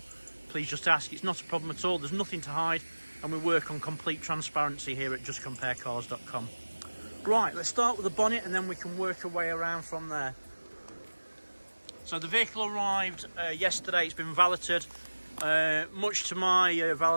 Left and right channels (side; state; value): both; inverted; correlation -1.00